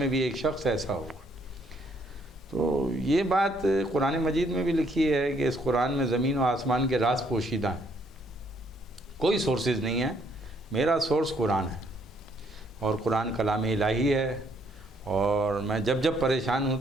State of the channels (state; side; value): normal; both; correlation 0.68